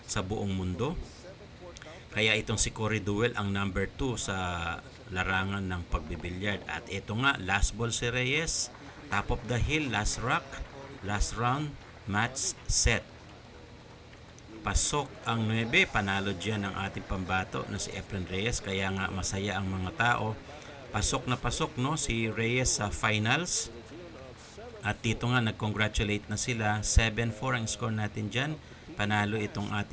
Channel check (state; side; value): identical; both; correlation 1.00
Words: sa buong mundo. Kaya itong si Corey Deuel ang number 2 sa larangan ng pagbibilyard. At ito nga, last ball si Reyes, top of the hill, last rock, last round, match set. Pasok ang 9, panalo dyan ang ating pambato na si Efren Reyes, kaya nga masaya ang mga tao. Pasok na pasok, no, si Reyes sa finals. At dito nga, nag-congratulate na sila. 7-4 ang score natin dyan. Panalo itong